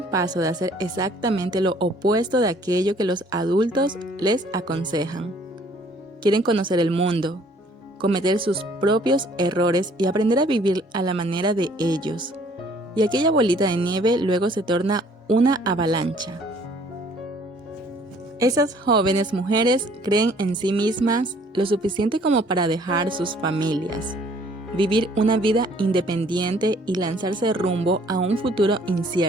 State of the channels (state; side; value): normal; both; correlation 0.58